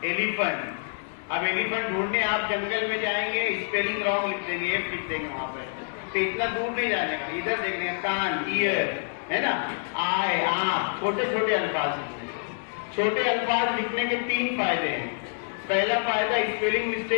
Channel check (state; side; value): silent; right; digital silence